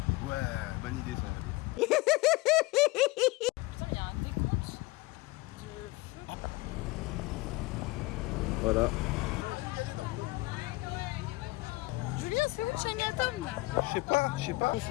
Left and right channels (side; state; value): right; quieter; 21.8 dB